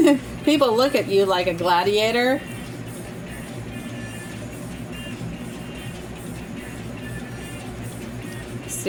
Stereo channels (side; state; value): both; identical; correlation 1.00